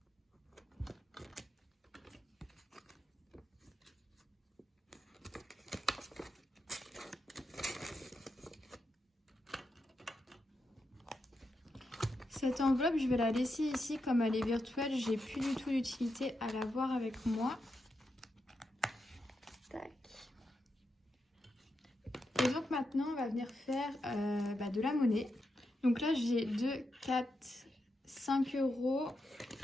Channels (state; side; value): normal; both; correlation 0.86